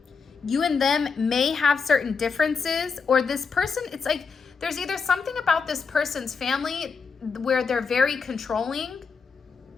You and them may have certain differences, or this person, it's like there's either something about this person's family where they're very controlling.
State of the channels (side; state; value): right; quieter; 5.4 dB